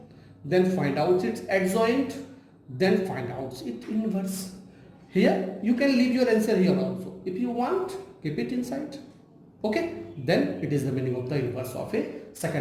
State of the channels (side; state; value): both; identical; correlation 1.00